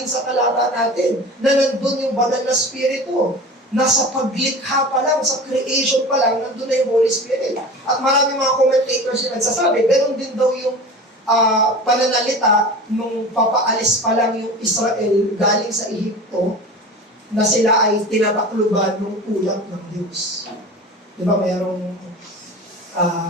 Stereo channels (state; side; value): normal; both; correlation 0.35